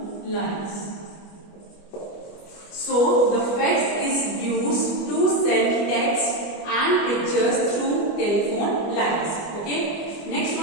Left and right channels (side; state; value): right; late; 24 ms